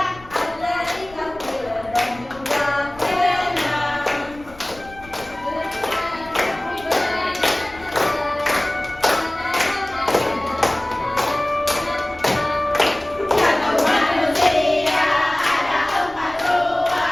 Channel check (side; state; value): left; noise; rumble, 21 dB below the sound